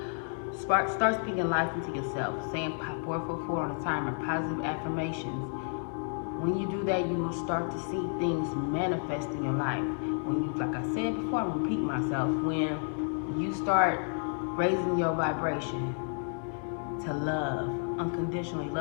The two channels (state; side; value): silent; right; 57 dB below the other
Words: Start speaking life into yourself. Saying 444 on the timer, positive affirmations. When you do that, you will start to see things manifest in your life. When you, like I said before, I'm repeating myself. When you start raising your vibration to love, unconditionally